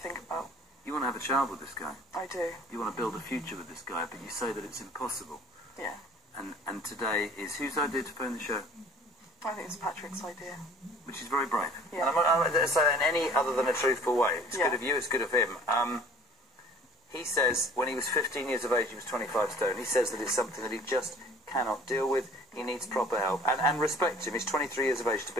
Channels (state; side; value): normal; both; correlation 0.50